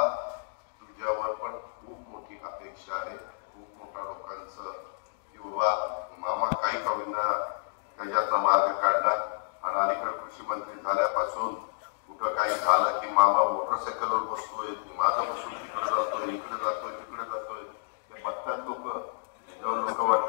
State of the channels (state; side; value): silent; right; digital silence